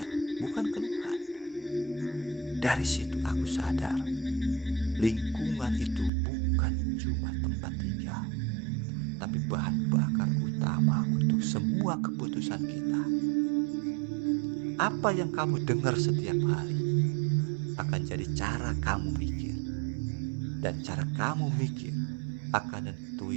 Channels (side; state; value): left; drops out; at 6.1 s